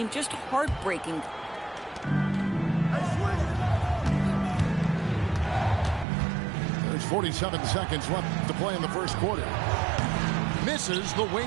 just heartbreaking. There's 47 seconds left to play in the first quarter. Misses the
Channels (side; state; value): left; drops out; at 6.1 s